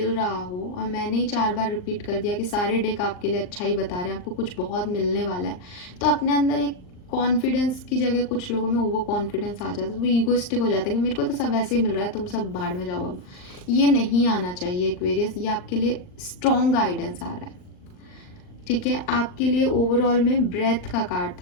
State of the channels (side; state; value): right; late; 39 ms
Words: रहा हो। और मैंने ही 4 बार रिपीट कर दिया कि सारे डेक आपके लिए अच्छा ही बता रहे हैं, आपको कुछ बहुत मिलने वाला है। तो अपने अंदर एक कॉन्फिडेंस की जगह कुछ लोगों में ओवर कॉन्फिडेंस आ जाता है, तो वो ईगोइस्टिक हो जाता है कि मेरे को तो सब वैसे ही मिल रहा है, तुम सब भाड़ में जाओ। अब ये नहीं आना चाहिए एक्वेरियस, ये आपके लिए स्ट्रॉन्ग गाइडेंस आ रहा है। ठीक है, आपके लिए ओवरऑल में ब्रेथ का कार्ड